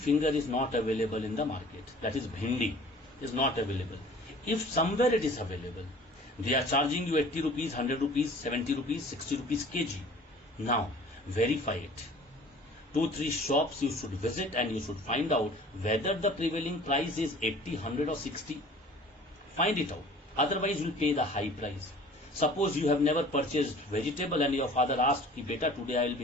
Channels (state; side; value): normal; both; correlation 0.47